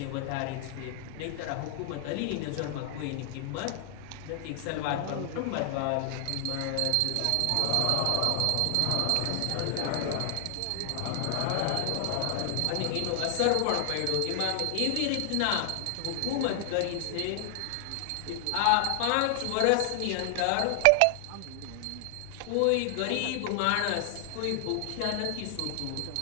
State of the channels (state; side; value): different; both; correlation 0.00